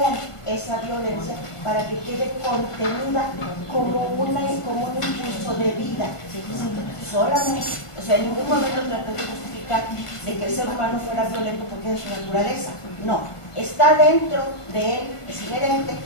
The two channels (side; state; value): right; late; 1.5 ms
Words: esa violencia para que quede contenida como un impulso de vida. ¿Sí? Solamente, o sea, en ningún momento traté de justificar de que el ser humano fuera violento porque es su naturaleza. No, está dentro de él, es inherente,